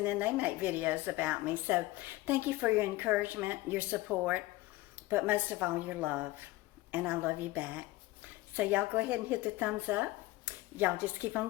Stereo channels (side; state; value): right; quieter; 18.8 dB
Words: then they make videos about me. So thank you for your encouragement, your support, but most of all, your love. And I love you back. So y'all go ahead and hit the thumbs up. Y'all just keep